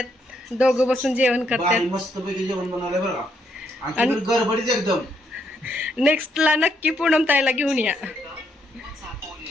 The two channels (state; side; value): normal; both; correlation 0.75